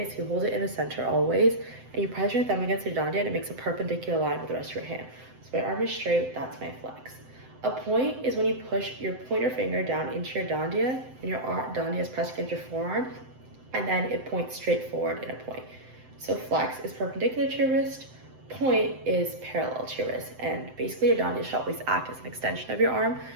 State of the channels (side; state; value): left; late; 7.8 ms